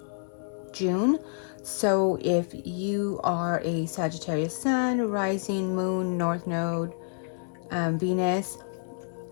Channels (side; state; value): right; silent; 59 dB below the other